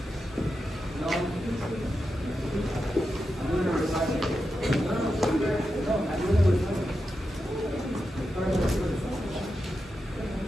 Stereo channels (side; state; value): both; normal; correlation 0.89